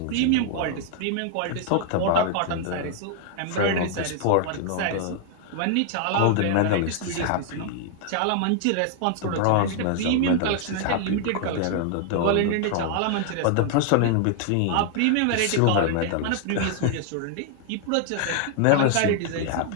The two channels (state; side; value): different; both; correlation 0.00